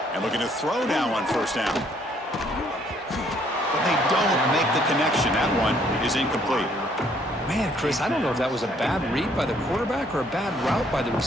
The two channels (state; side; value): normal; both; correlation 0.65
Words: And looking to throw now on first down. But they don't make the connection. That one is incomplete. Man, Chris, I don't know if that was a bad read by the quarterback or a bad route by the